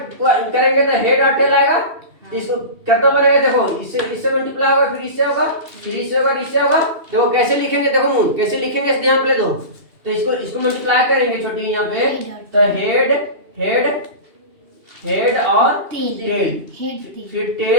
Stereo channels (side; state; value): left; late; 2.8 ms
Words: करेंगे तो हेड और टेल आएगा। तो इसको कितना बनेगा? देखो इससे मल्टीप्लाई होगा, फिर इससे होगा, फिर इससे होगा, इससे होगा। देखो कैसे लिखेंगे, देखो मून कैसे लिखेंगे, इस ध्यान पे दो। तो इसको मल्टीप्लाई करेंगे छोटी यहाँ पे, तो हेड हेड हेड और टेल, फिर